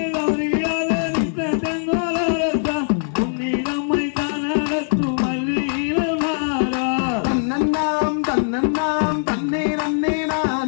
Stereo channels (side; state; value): right; silent; digital silence